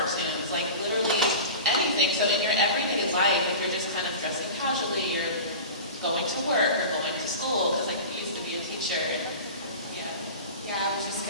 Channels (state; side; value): inverted; both; correlation -0.34